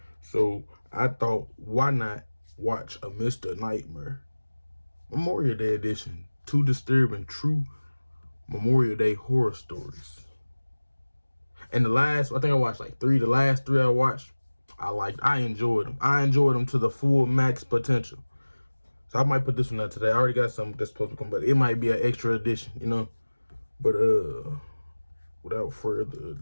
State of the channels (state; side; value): inverted; both; correlation -1.00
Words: So I thought, why not watch a Mr. Nightmare Memorial Day edition? 2 disturbing true Memorial Day horror stories. And I think I watched like 3. The last 3 I watched, I enjoyed them. I enjoyed them to the full max potential. So I might put this one out today. I already got something that's supposed to come, but it might be an extra edition, you know. But without further